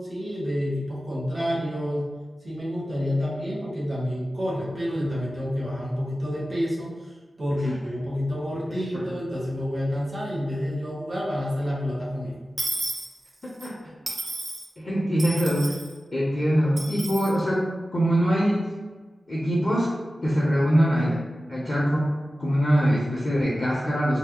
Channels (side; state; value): both; normal; correlation 0.95